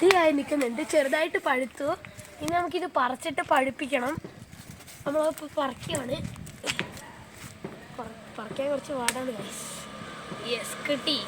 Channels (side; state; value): both; identical; correlation 1.00